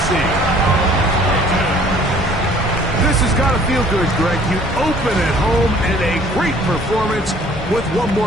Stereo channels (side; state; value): both; normal; correlation 0.55